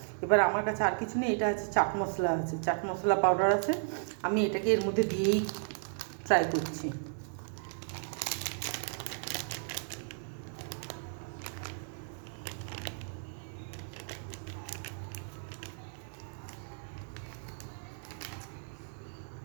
এবার আমার কাছে আর কিছু নেই, এটা আছে চাট মশলা, আছে চাট মশলা পাউডার আছে, আমি এটাকে এর মধ্যে দিয়েই ট্রাই করছি।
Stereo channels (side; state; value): left; silent; 55 dB below the other